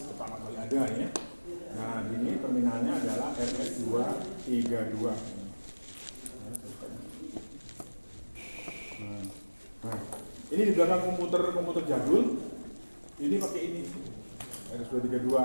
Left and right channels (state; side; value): inverted; both; correlation -1.00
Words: pertama kali ada ya. Nah, ini terminalnya adalah RS232. Nah, ini di belakang komputer jadul. Ini pakai ini RS232.